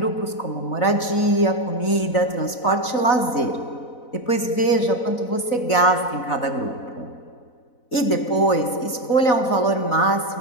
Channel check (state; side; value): late; right; 4.0 ms